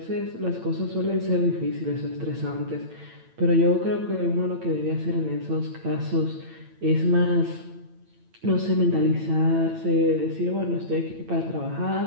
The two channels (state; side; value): late; left; 8.9 ms